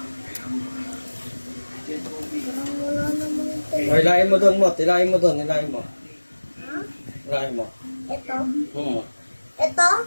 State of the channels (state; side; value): inverted; both; correlation -1.00